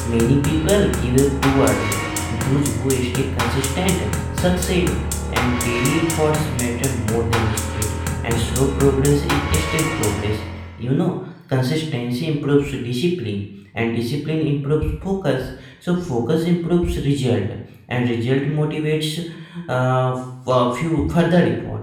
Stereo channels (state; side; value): identical; both; correlation 1.00